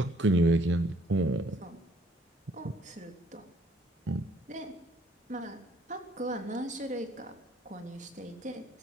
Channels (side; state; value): both; normal; correlation 0.63